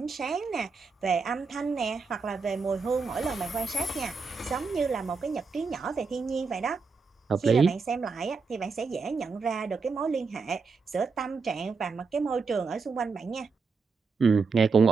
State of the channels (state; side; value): quieter; left; 4.7 dB